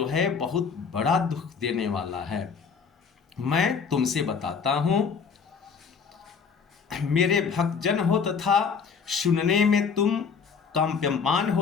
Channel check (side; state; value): right; quieter; 5.9 dB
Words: है बहुत बड़ा दुख देने वाला है। मैं तुमसे बताता हूं, मेरे भक्तजन हो तथा सुनने में तुम कंप्यमान